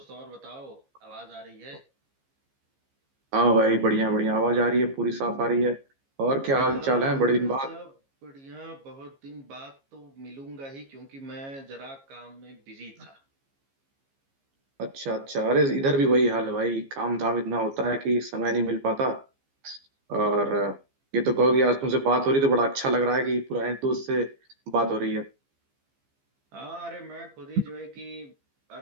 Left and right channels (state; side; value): late; left; 15 ms